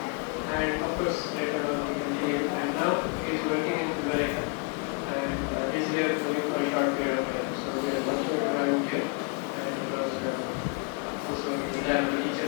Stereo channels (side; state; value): right; quieter; 36.0 dB